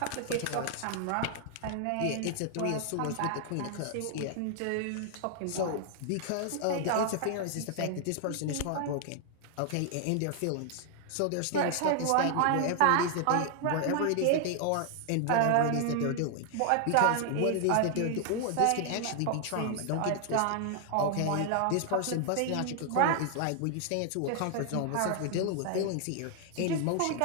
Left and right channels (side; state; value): both; different; correlation 0.00